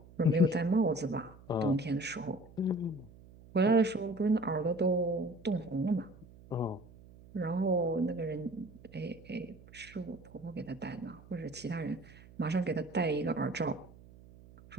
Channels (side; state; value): right; noise; hum, 21 dB below the sound